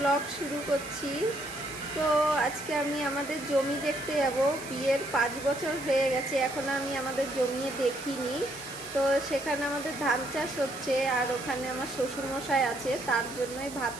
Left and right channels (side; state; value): right; noise; hiss, 14 dB below the sound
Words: শুরু করছি। তো আজকে আমি আমাদের জমি দেখতে যাব। বিয়ের 5 বছর হয়ে গেছে, এখনও আমি আমাদের জমি দেখিনি। তো সেখানে আমাদের ধান চাষ হচ্ছে, আর ওখানে আমার শ্বশুরমশাই আছে, তার জন্যই ভাত